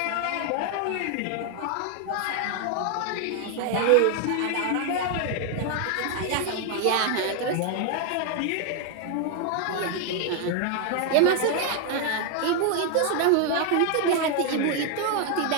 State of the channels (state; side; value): different; both; correlation 0.00